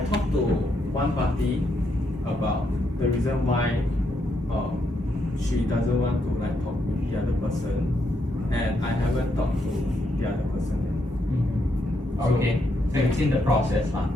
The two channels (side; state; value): both; normal; correlation 0.78